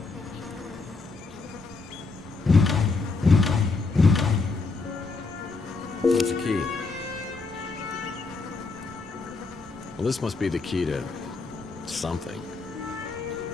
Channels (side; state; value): right; quieter; 4.0 dB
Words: What's the key? Well, this must be the key to something.